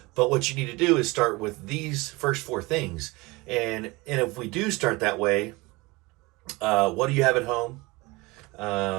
But what you need to do is start with these first four things. And if we do start that way, what do you have at home?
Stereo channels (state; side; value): quieter; left; 23.3 dB